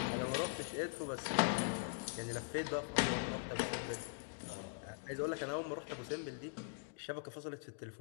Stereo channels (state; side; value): silent; right; digital silence